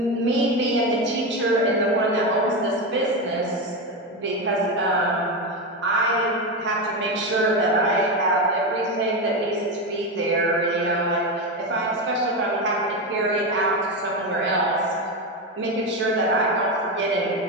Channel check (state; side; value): normal; both; correlation 0.14